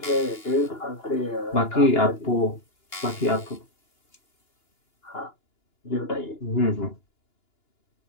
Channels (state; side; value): late; right; 2.9 ms